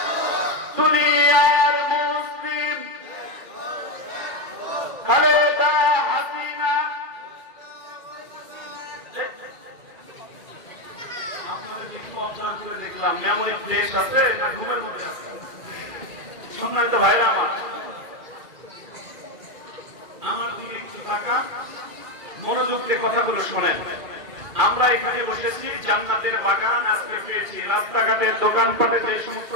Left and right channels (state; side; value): late; left; 2.4 ms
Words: দুনিয়ার মুসলিম খালেদা হাসিনা। আপনাদেরকে একটু অবজার্ভ করে দেখলাম, মেমোরি ফ্রেশ আছে না ঘুমের মধ্যে আছে? সম্মানিত ভাইরা আমার দিকে একটু তাকান, মনোযোগ দিয়ে কথাগুলো শোনেন। আমরা এখানে বসেছি, জান্নাতের বাগান আজকে পেয়েছি। রাস্তাঘাটের দোকানপাটে যে সমস্ত